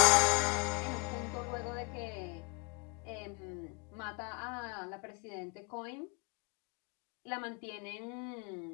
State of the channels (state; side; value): quieter; right; 30.4 dB